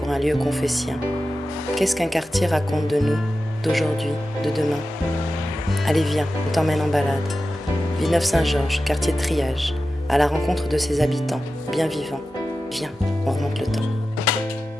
un lieu confessien? Qu'est-ce qu'un quartier raconte de nous, d'aujourd'hui, de demain? Allez, viens, on t'emmène en balade. Villeneuve-Saint-Georges, quartier de triage, à la rencontre de ses habitants, bien vivants. Viens, on remonte le temps.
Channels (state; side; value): normal; both; correlation 0.93